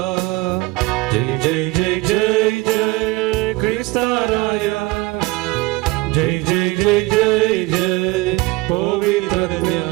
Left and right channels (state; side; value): quieter; left; 21.4 dB